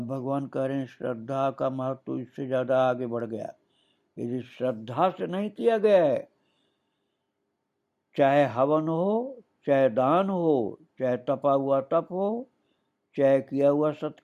भगवान कह रहे हैं श्रद्धा का महत्व तो इससे ज्यादा आगे बढ़ गया। यदि श्रद्धा से नहीं किया गया है, चाहे हवन हो, चाहे दान हो, चाहे तपा हुआ तप हो, चाहे किया हुआ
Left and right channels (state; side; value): identical; both; correlation 1.00